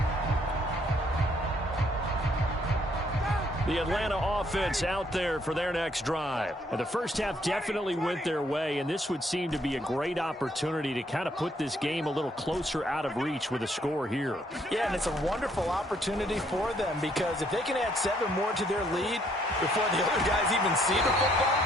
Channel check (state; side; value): normal; both; correlation 0.68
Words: The Atlanta offense out there for their next drive. And the first half definitely went their way, and this would seem to be a great opportunity to kind of put this game a little closer out of reach with a score here. Yeah, and it's a wonderful opportunity for them because if they can add 7 more to their lead before the other guys even see the football,